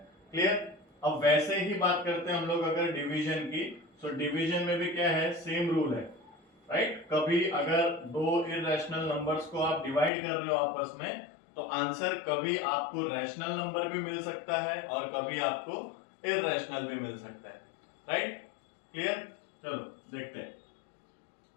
क्लियर। अब वैसे ही बात करते हैं हम लोग अगर डिवीजन की, तो डिवीजन में भी क्या है, सेम रूल है, राइट। कभी अगर दो इर्रेशनल नंबर्स को आप डिवाइड कर रहे हो आपस में तो आंसर कभी आपको रैशनल नंबर भी मिल सकता है और कभी आपको इर्रेशनल भी मिल सकता है, राइट। क्लियर। चलो देखते हैं।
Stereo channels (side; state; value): right; drops out; at 10.1 s